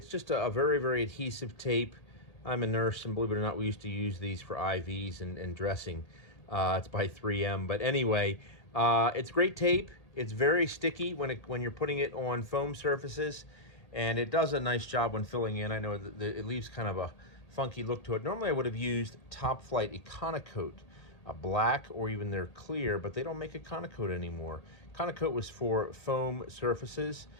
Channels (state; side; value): late; right; 1.8 ms